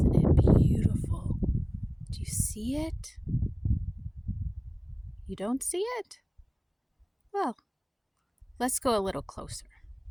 it beautiful? Do you see it? You don't see it? Well, let's go a little closer.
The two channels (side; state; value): both; identical; correlation 1.00